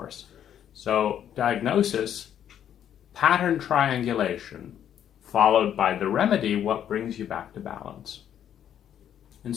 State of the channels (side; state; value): right; quieter; 9.9 dB